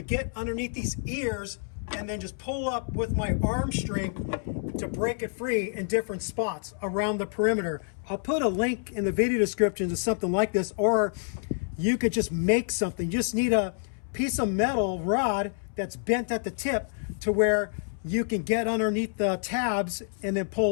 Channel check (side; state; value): right; silent; 59 dB below the other